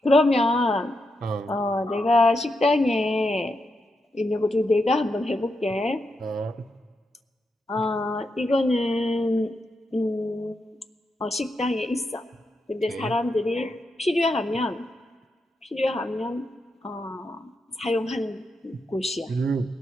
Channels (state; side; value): normal; both; correlation 0.84